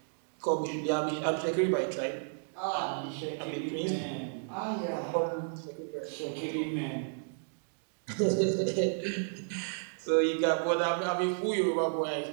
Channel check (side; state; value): left; silent; digital silence